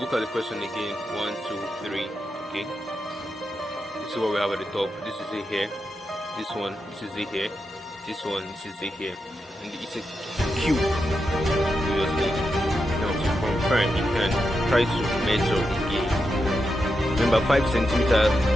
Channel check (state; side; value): normal; both; correlation 0.87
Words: at the question again. 1, 2, 3. Okay. This is what we have at the top. This is it here. This one. This is it here. This one. This is it here. And it's a cube. Obviously. Now to confirm, you can try to measure again. Remember, 5 centimeters